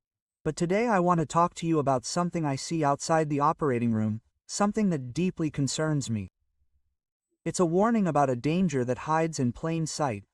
But today I want to talk to you about something I see outside the operating room, something that deeply concerns me. It's a warning about a danger that hides in plain sight,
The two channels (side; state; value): both; identical; correlation 1.00